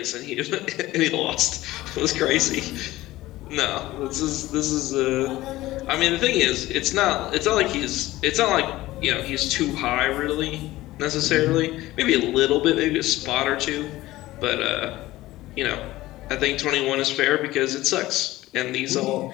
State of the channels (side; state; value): right; quieter; 17.1 dB